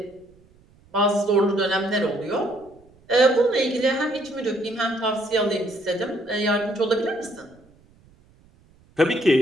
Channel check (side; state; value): right; noise; rumble, 30 dB below the sound